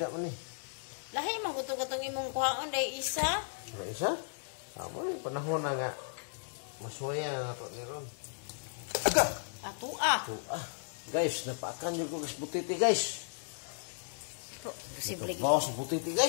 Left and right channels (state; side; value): silent; right; digital silence